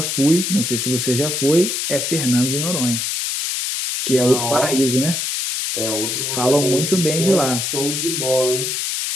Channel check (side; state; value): left; noise; hiss, 1 dB below the sound